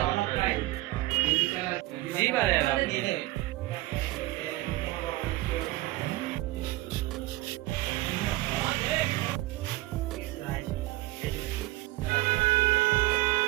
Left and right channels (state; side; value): quieter; left; 18.7 dB